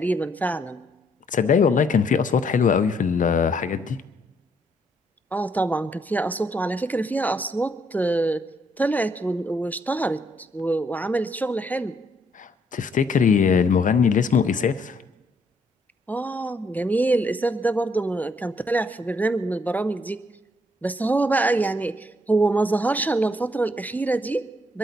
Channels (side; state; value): both; normal; correlation 0.70